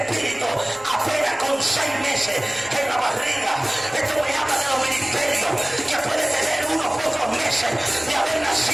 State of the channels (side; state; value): left; noise; rumble, 25 dB below the sound